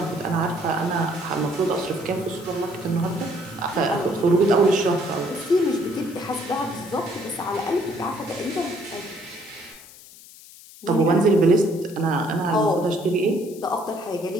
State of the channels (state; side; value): noise; left; hiss, 20 dB below the sound